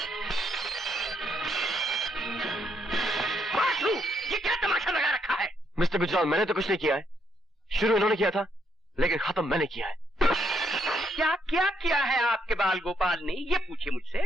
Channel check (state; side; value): normal; both; correlation 0.74